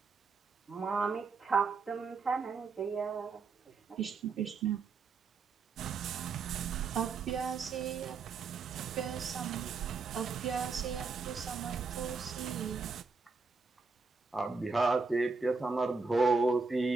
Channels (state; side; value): quieter; left; 4.6 dB